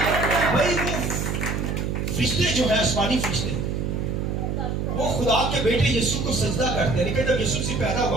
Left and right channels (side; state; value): right; noise; hum, 1 dB below the sound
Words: بھائی وہ فرشتے جو ہے آسمانی فرشتے وہ خدا کے بیٹے یسوع کو سجدہ کرتے ہیں. لیکن جب یسوع سے پیدا